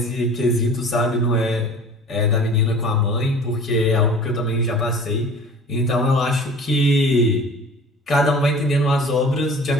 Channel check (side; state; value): both; normal; correlation 0.44